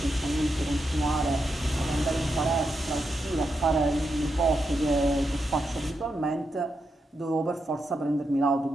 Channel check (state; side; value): normal; both; correlation 0.84